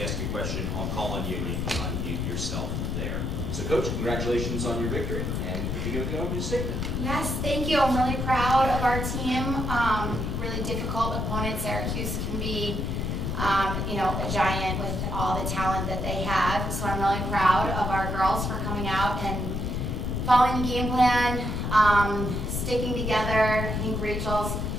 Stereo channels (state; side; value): noise; left; rumble, 2 dB below the sound